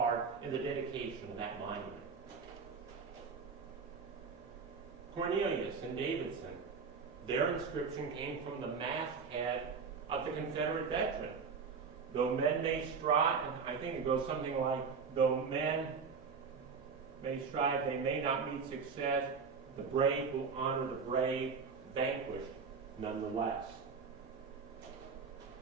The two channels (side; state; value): left; quieter; 5.4 dB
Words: in the dedication of that monument. Cornelius and Davidson, their inscription came from the masthead of the Confederate veteran. Though men may strive, and I think it goes something like, though men may strive, they may not meet success, the brave will honor the brave, vanquished nonetheless.